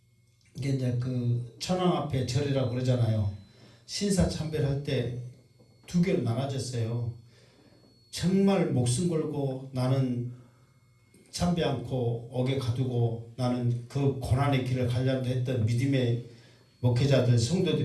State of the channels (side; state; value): both; identical; correlation 1.00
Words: 이게 이제 그 천황 앞에 절이라고 그러잖아요. 신사참배를 할 때 두 개로 나눠졌어요. 정말 목숨 걸고 나는 참배 않고 옥에 가두고 나는 그 고난의 길을 가려고 했던 믿음의 목회자들